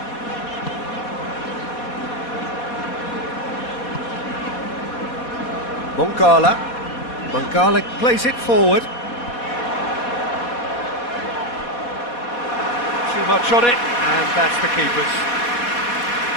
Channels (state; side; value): late; right; 4.2 ms